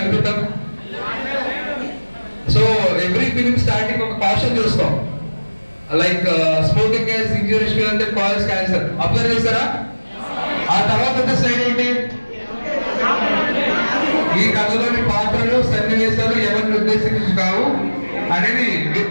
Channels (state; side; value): inverted; both; correlation -1.00